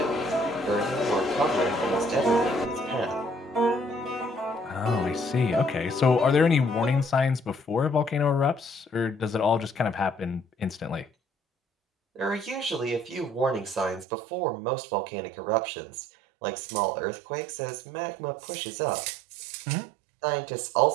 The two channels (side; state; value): left; drops out; at 14.1 s